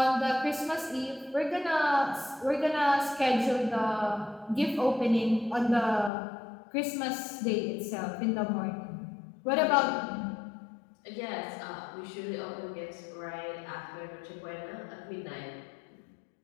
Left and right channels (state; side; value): drops out; right; at 6.1 s